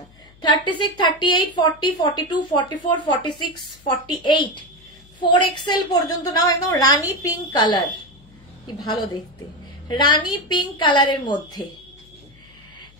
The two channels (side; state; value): left; noise; hum, 27 dB below the sound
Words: 36, 38, 40, 42, 44, 46, 48, 4XL পর্যন্ত নাও। একদম রানী পিঙ্ক কালার, কি ভালো দেখতে, রানী পিঙ্ক কালারের মধ্যে।